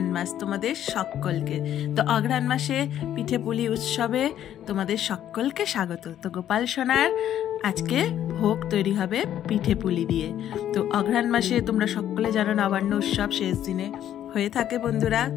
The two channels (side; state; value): right; quieter; 11.0 dB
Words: মাস তোমাদের সকলকে। তো অঘ্রাণ মাসে পিঠে পুলি উৎসবে তোমাদের সকলকে স্বাগত। তো গোপাল সোনার আজকে ভোগ তৈরি হবে পিঠে পুলি দিয়ে। তো অঘ্রাণ মাসে তোমরা সকলে জানো নবান্ন উৎসব শেষ দিনে হয়ে থাকে বন্ধুরা।